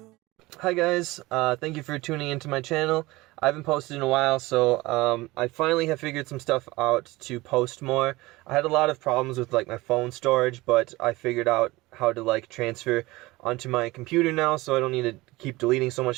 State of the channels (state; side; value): quieter; left; 20.5 dB